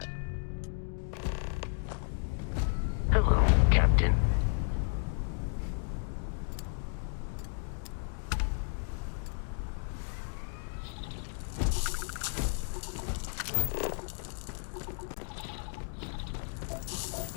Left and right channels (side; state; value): right; silent; 56 dB below the other